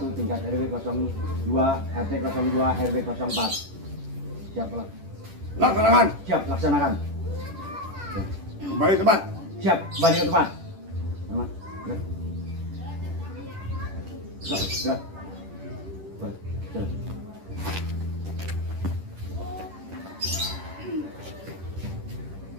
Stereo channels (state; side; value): late; left; 10 ms